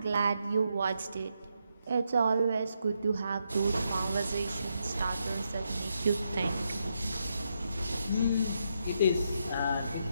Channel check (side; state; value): both; inverted; correlation -0.81